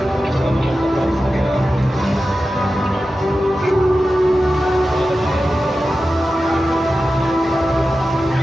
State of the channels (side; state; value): both; normal; correlation 0.93